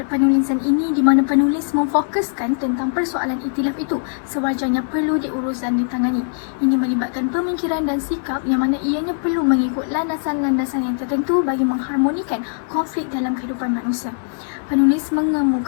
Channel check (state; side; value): silent; right; digital silence